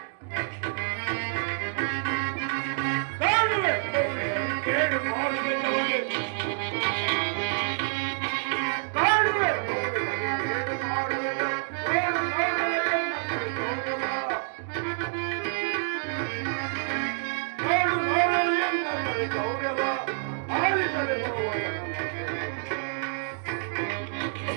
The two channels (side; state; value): left; silent; digital silence